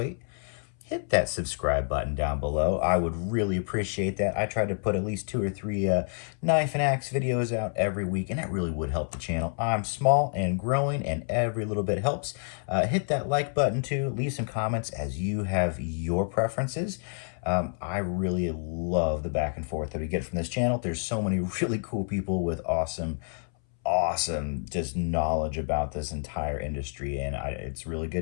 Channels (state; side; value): silent; right; 59 dB below the other